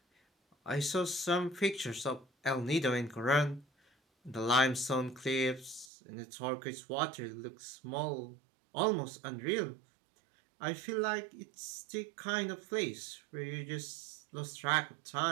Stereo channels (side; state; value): left; drops out; at 5.9 s